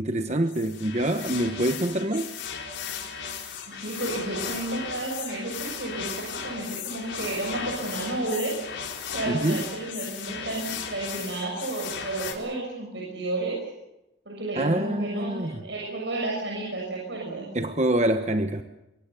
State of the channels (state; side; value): normal; both; correlation 0.30